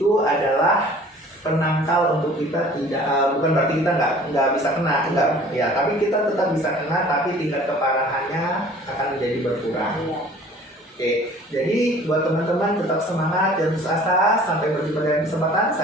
adalah penangkal untuk kita tidak, bukan berarti kita nggak bisa kena, enggak ya, tapi kita tetap bisa kena, tapi tingkat keparahannya akan menjadi berkurang. Iya. Oke, jadi buat teman-teman tetap semangat dan putus asa. Sampai berjumpa di kesempatan.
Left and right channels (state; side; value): normal; both; correlation 0.49